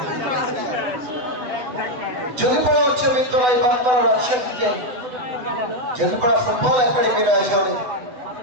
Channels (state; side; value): late; left; 8.0 ms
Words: জঙ্গিপাড়া উচ্চ বিদ্যালয় বাগমারা রাজশাহীতে জঙ্গিপাড়া ফুটবল একাডেমির আয়োজনে